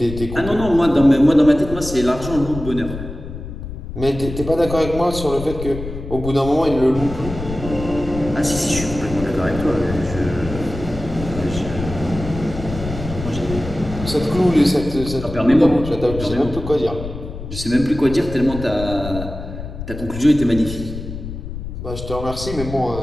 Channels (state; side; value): noise; left; rumble, 9 dB below the sound